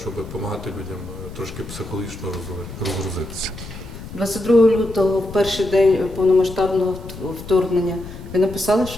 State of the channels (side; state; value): left; noise; rumble, 12 dB below the sound